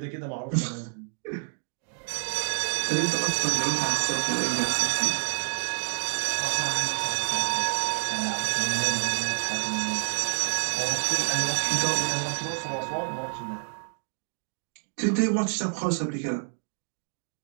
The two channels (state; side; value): silent; left; 57 dB below the other